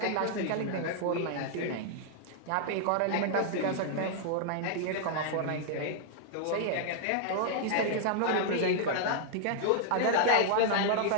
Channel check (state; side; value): different; both; correlation -0.01